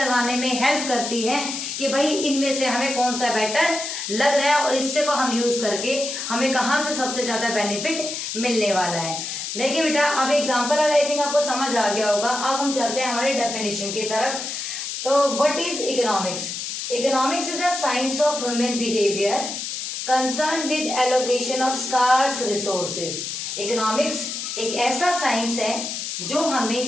में हेल्प करती है कि भाई इनमें से हमें कौन सा बेटर लग रहा है और इससे को हम यूज करके हमें कहाँ से सबसे ज्यादा बेनिफिट मिलने वाला है। देखिए बेटा, अब एग्जांपल आई थिंक आपको समझ आ गया होगा। अब हम चलते हैं हमारे डेफिनेशन की तरफ। तो what is economics? Economics is a science of human behaviour concern with allocation of scarce resources. Economics एक ऐसा साइंस है जो हमें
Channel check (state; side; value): noise; left; hiss, 5 dB below the sound